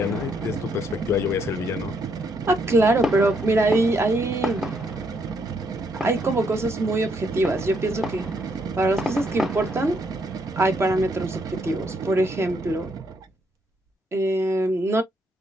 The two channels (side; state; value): both; normal; correlation 0.74